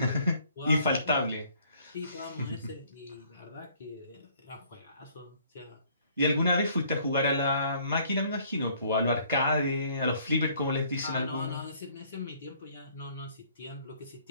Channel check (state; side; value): inverted; both; correlation -0.61